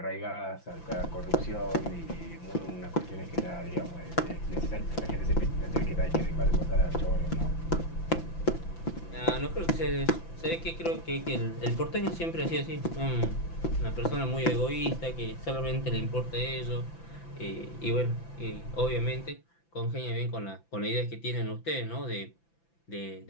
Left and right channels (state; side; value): late; right; 5.9 ms